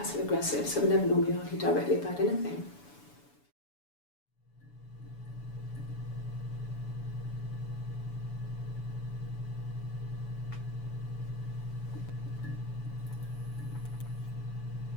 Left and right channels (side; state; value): right; late; 7.0 ms